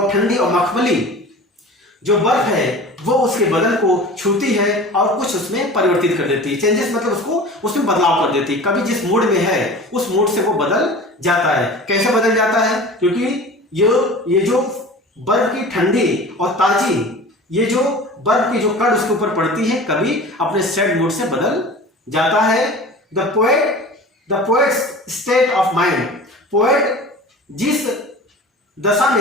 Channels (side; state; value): both; normal; correlation 0.38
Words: ठंडी और मखमली जो बर्फ है वो उसके बदन को छूती है और कुछ उसमें परिवर्तित कर देती है। चेंजेस मतलब उसको उसमें बदलाव कर देती है। कभी जिस मूड में है उस मूड से वो बदल जाता है। कैसे बदल जाता है, क्योंकि ये जो बर्फ की ठंडी और ताजी, ये जो बर्फ की जो कण उसके ऊपर पड़ती है, कभी अपने सैड मूड से बदल जाता है। The poet state of mind, poet जिस दशा